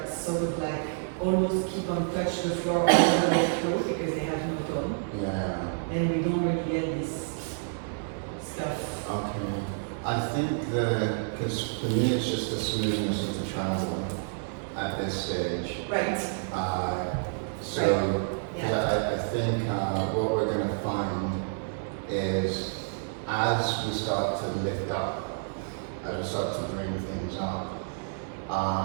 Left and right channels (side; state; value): left; silent; digital silence